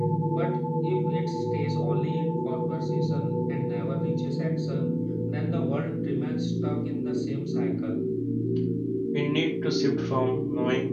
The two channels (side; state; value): both; identical; correlation 1.00